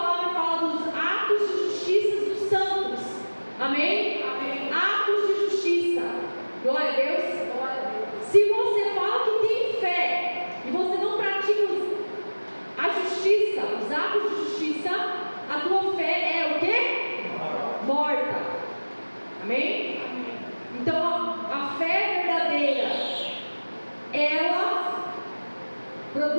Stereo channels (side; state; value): both; inverted; correlation -1.00